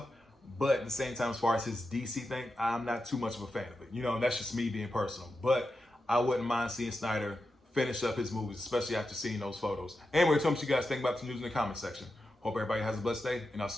but at the same time, as far as his DC thing, I'm not too much of a fan of it. You know, and that's just me being personal. But I wouldn't mind seeing Snyder finish up his movies, especially after seeing those photos. Anyway, tell me what you guys think about the news in the comment section. Hope everybody has a blessed day, and I'll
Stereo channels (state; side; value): normal; both; correlation 0.89